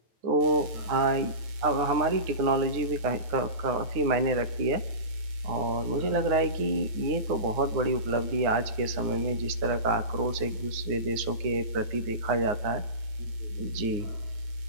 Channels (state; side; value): late; left; 9.7 ms